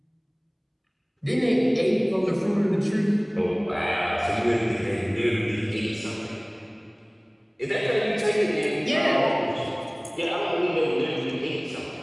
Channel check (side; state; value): both; identical; correlation 1.00